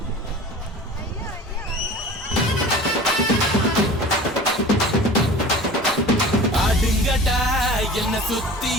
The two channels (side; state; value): both; normal; correlation 0.40